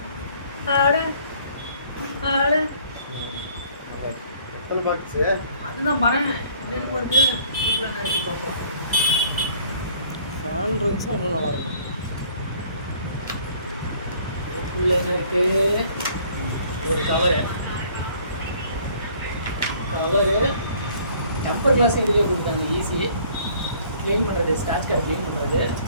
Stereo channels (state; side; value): inverted; both; correlation -0.57